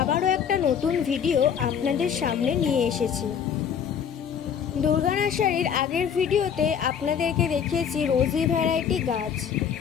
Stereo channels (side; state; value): right; quieter; 7.8 dB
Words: আবারও একটা নতুন ভিডিও আপনাদের সামনে নিয়ে এসেছি। দুর্গা নার্সারির আগের ভিডিওতে আপনাদেরকে দেখিয়েছি রোজি ভ্যারাইটি গাছ।